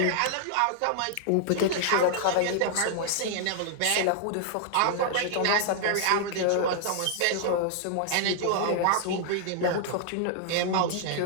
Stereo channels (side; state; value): both; different; correlation -0.01